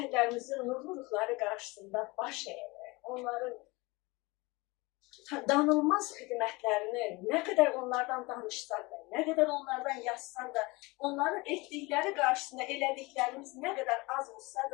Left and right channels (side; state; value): right; quieter; 24.2 dB